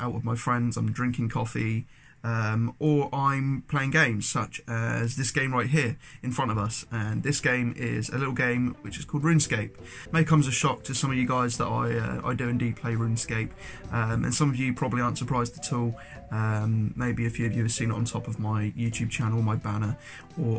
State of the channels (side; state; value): both; identical; correlation 1.00